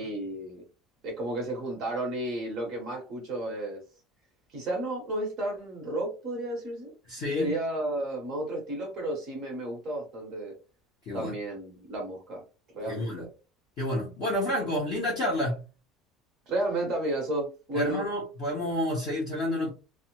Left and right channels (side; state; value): both; normal; correlation 0.33